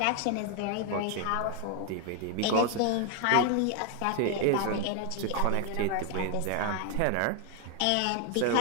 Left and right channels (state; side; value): different; both; correlation 0.01